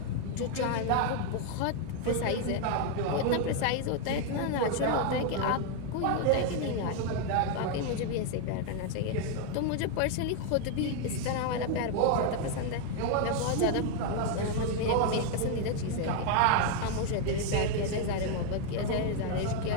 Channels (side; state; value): both; different; correlation 0.00